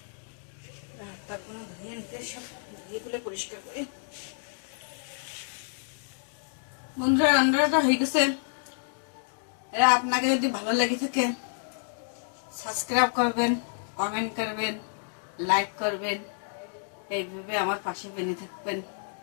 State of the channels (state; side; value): silent; right; digital silence